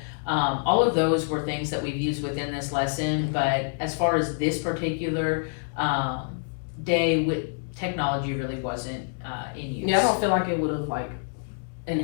All of those were things that we've used within this lesson, but as far as this particular day, with technology really wasn't in use. Yeah, I don't feel like it would have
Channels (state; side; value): silent; right; digital silence